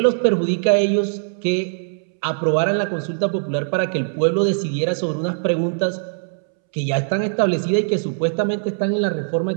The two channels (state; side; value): silent; left; 65 dB below the other